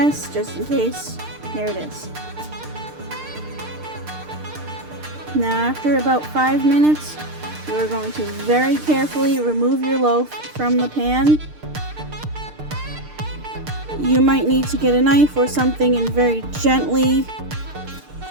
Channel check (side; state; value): left; late; 6.6 ms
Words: just in case, here it is. Now after about 5 minutes, you are going to very carefully remove your loaf from the pan. You might need to get a knife or something and very gently